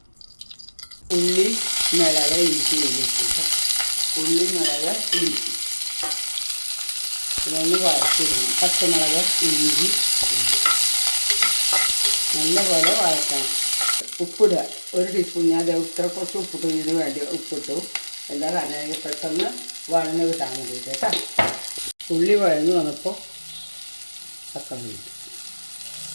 ഉള്ളി, മിളക്, ഇഞ്ചി വേവിച്ചിട്ട് ഉള്ളി, മിളക്, ഇഞ്ചി ഇതൊന്ന് വഴറ്റിടണം. പച്ചമുളക്, ഇഞ്ചി നല്ലപോലെ വഴറ്റണം. ഉപ്പിടുക, 1 ടീസ്പൂൺ. ഞാൻ കുറച്ച് ഉപ്പിട്ടു, ഇതിന് വേണ്ടി ഉപ്പിട്ടു. എന്താ കാരണം പെട്ടെന്ന് വഴന്ന് കിട്ടാൻ വേണ്ടിയിട്ട് കേട്ടോ. ഉള്ളി വഴന്ന് വന്നപ്പോൾ തക്കാളി ഇട്ടു.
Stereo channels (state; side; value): inverted; both; correlation -1.00